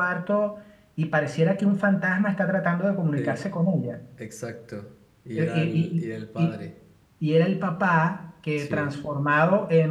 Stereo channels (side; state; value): both; identical; correlation 1.00